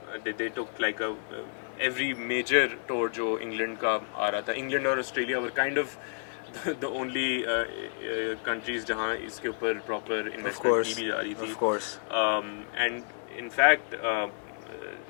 they took like every major tour जो इंग्लैंड का आ रहा था. इंग्लैंड और Australia were kind of the only countries जहाँ इसके ऊपर proper investment की भी जा रही थी. And in fact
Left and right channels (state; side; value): silent; right; digital silence